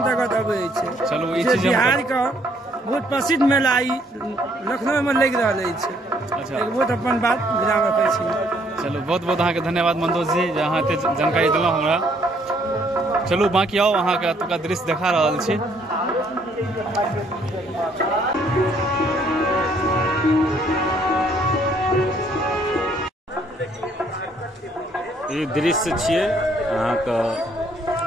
अबै छै। चलो ई चीज बिहार का बहुत प्रसिद्ध मेला ई लखनऊ में लग रहा है। अच्छा। एक बहुत अपन बात विराम रखै छी। चलो बहुत बहुत अहाँ के धन्यवाद मंतोष जी, जे अहाँ एते जानकारी देलहुँ हमरा। चलू बाकी आओ अहाँ के एतुका दृश्य देखा रहल छी। ये दृश्य छियै अहाँ के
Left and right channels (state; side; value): normal; both; correlation 0.66